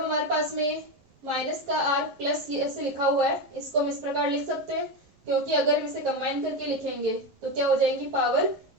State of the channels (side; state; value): left; late; 11 ms